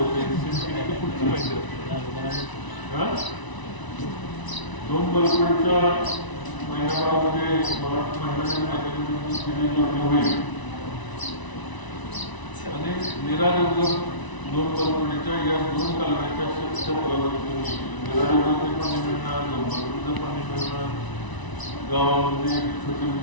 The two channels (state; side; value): late; right; 1.0 ms